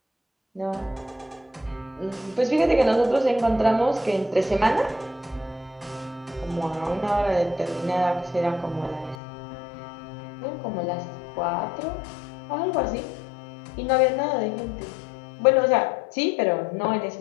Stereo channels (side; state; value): right; drops out; at 9.2 s